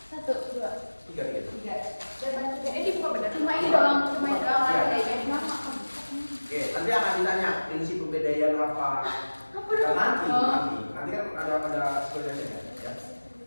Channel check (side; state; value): both; inverted; correlation -1.00